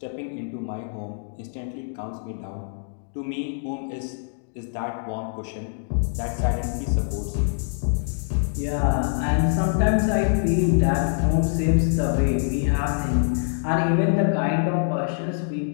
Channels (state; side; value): silent; right; digital silence